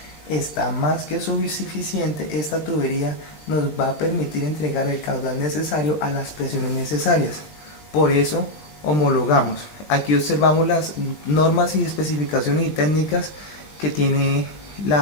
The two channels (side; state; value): right; late; 20 ms